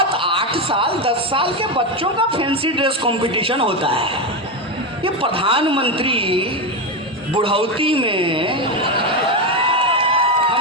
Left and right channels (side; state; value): both; normal; correlation 0.12